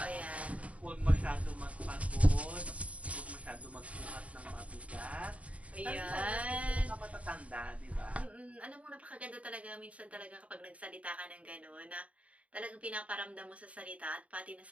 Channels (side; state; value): left; late; 0.066 ms